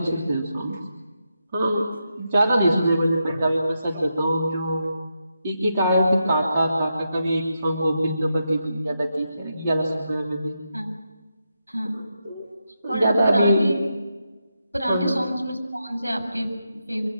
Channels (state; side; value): inverted; both; correlation -0.85